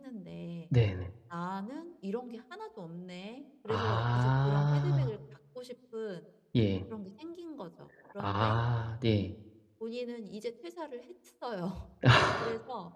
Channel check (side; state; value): both; identical; correlation 1.00